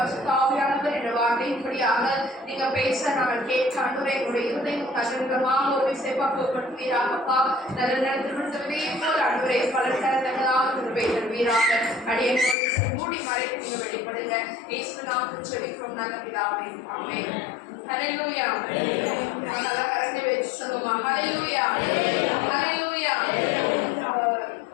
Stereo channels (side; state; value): right; drops out; at 12.6 s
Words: என்ற வார்த்தையின்படியாக நீங்க பேச நாங்கள் கேட்க ஆண்டவரை எங்களுடைய இருதயம் கதிரமாக ஒரு விசைப்பாக்குவீராகப்பா. நல்ல நேரத்திலே போல் ஆண்டவரை பல நேரங்களாக திருப்பை தருவீராக. அடியை மூடி மறைத்து நீங்க வெளிப்படுங்க. இயேசு நாமத்தில் ஜெபிக்கிறோம் நல்ல பிதாவே. ஆமென். ஹல்லேலூயா. நல்லா கரெக்டா வெச்சு சொல்லுமா. ஹல்லேலூயா. ஹல்லேலூயா.